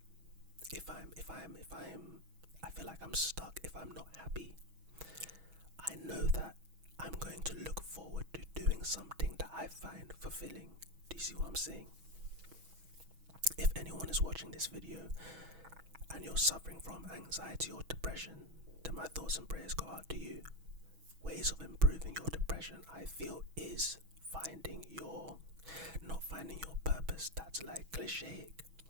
I feel like I'm stuck, if I'm not happy, I know that I'm going to look forward to doing something that I find fulfilling. Do you see what I'm saying? If anyone is watching this video and you're suffering from anxiety or depression, then my thoughts and prayers go out to you. Ways of improving your depression, I feel, is not finding your purpose. That's like cliche.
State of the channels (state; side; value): late; left; 6.2 ms